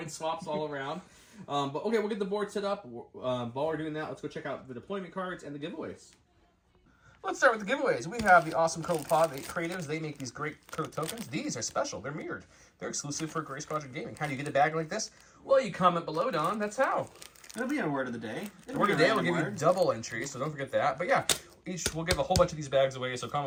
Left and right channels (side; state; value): both; identical; correlation 1.00